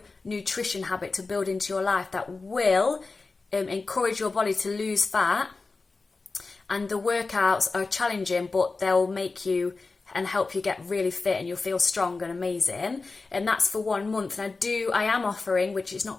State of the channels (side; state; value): right; quieter; 3.9 dB